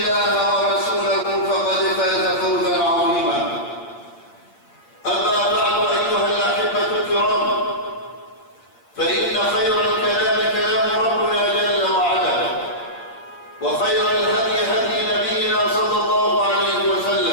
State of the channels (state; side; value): late; right; 8.5 ms